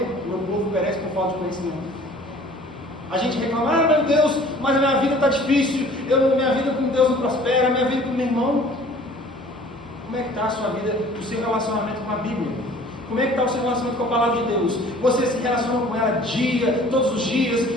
O meu povo perece por falta de conhecimento. A gente reclama, meu Deus, mas a minha vida está difícil, minha vida com Deus não prospera, minha vida com meu irmão. Como é que está a sua vida, o seu relacionamento com a Bíblia? Como é que está o seu relacionamento com a palavra de Deus? Você se relaciona com ela todos os dias,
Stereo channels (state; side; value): normal; both; correlation 0.50